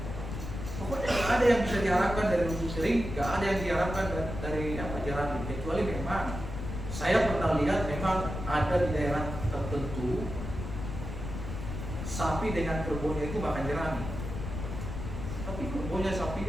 Pokoknya nggak ada yang bisa diharapkan dari rumput kering, nggak ada yang diharapkan dari jerami, kecuali memang saya pernah lihat memang ada di daerah tertentu sapi dengan kerbaunya itu makan jerami. Tapi kerbaunya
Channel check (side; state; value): left; noise; rumble, 7 dB below the sound